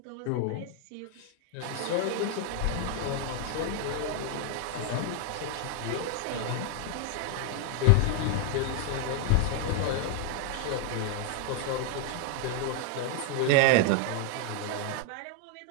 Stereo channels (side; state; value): both; different; correlation 0.00